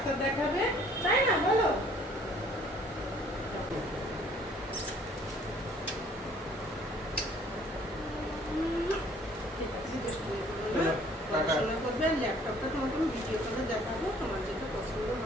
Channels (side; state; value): both; normal; correlation 0.57